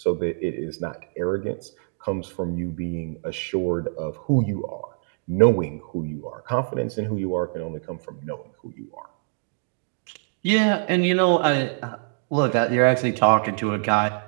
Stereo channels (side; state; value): left; silent; digital silence